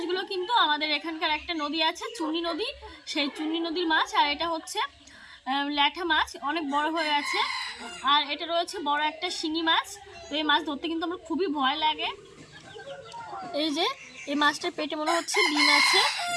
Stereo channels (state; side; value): identical; both; correlation 1.00